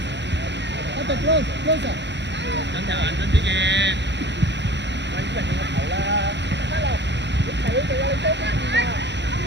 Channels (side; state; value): left; late; 0.51 ms